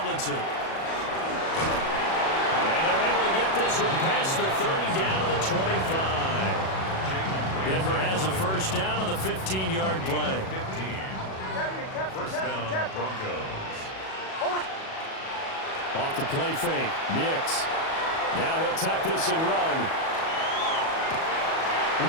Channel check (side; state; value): right; late; 37 ms